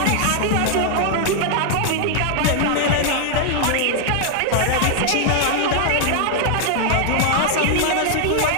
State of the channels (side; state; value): both; different; correlation 0.00